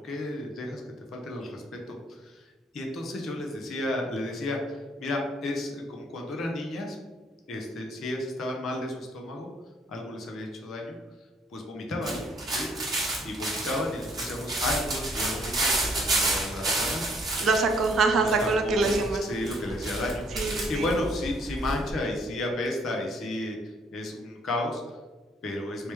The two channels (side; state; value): both; normal; correlation 0.65